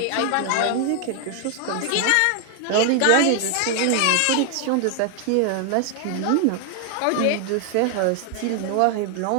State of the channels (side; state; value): both; different; correlation 0.00